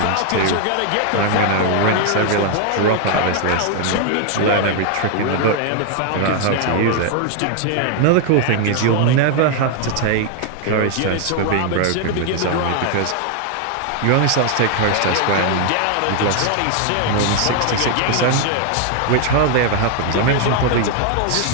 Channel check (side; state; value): both; different; correlation 0.00